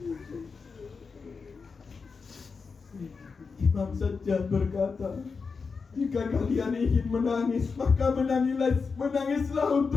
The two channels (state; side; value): quieter; right; 5.0 dB